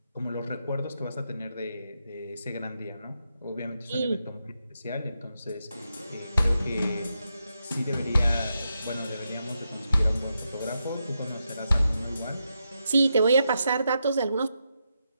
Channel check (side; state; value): both; inverted; correlation -0.85